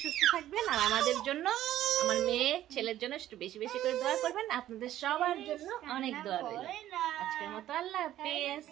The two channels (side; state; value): left; quieter; 13.0 dB